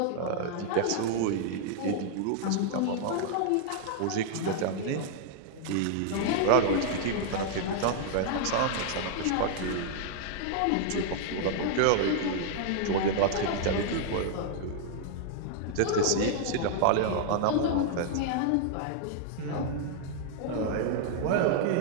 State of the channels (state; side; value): different; both; correlation -0.01